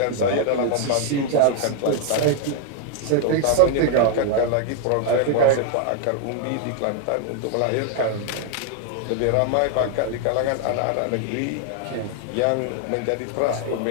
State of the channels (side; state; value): both; different; correlation 0.00